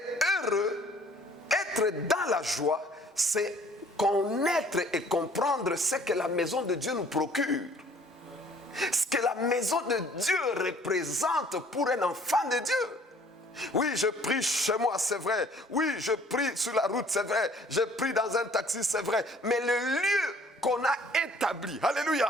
heureux, être dans la joie, c'est connaître et comprendre ce que la maison de Dieu nous procure. Ce que la maison de Dieu représente pour un enfant de Dieu. Oui, je prie chez moi, c'est vrai. Oui, je prie sur la route, c'est vrai. Je prie dans un taxi, c'est vrai. Mais le lieu qu'on a établi,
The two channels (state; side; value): normal; both; correlation 0.56